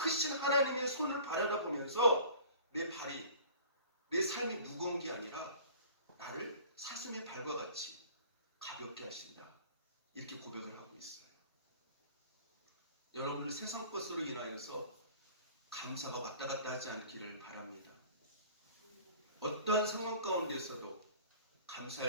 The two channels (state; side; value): inverted; both; correlation -0.45